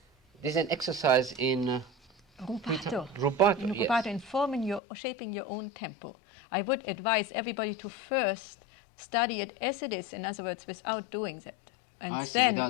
This is an exercise in Rubato. rubato. In Yes. rubato, in forming shaping your own tempo. I would advise everybody to first study it as it is, in other words, without doing that. And I see, then,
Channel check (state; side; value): drops out; right; at 4.8 s